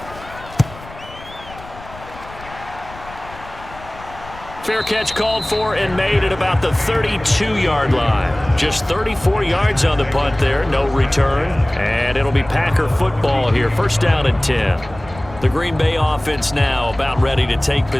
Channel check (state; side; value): noise; left; rumble, 18 dB below the sound